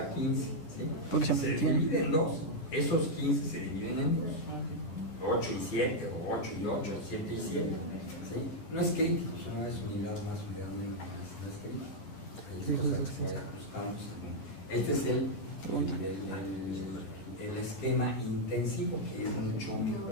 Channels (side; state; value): right; late; 12 ms